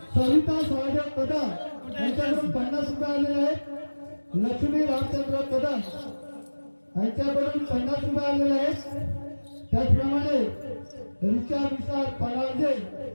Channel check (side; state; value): both; inverted; correlation -1.00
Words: सविता सहदेव कदम यांच्याकडून 50 रुपये आलेले आहेत. लक्ष्मी रामचंद्र कदम यांच्याकडून 50 रुपये आलेले आहेत. त्याचप्रमाणे रिचा विशाल परांजे